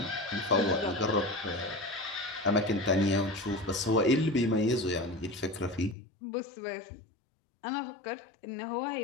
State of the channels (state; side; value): drops out; right; at 6.0 s